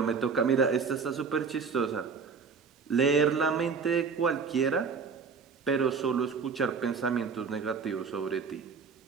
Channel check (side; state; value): left; quieter; 5.4 dB